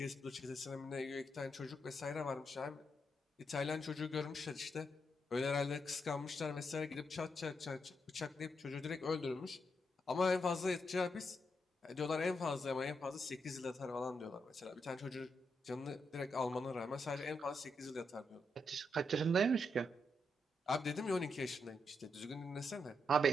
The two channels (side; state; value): both; normal; correlation 0.81